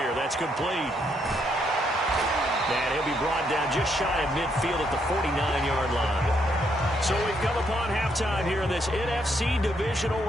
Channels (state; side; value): normal; both; correlation 0.74